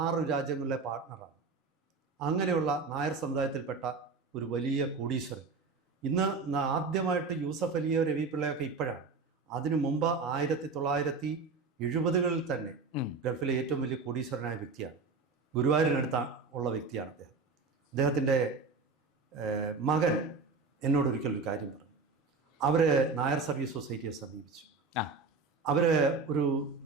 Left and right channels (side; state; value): left; quieter; 4.4 dB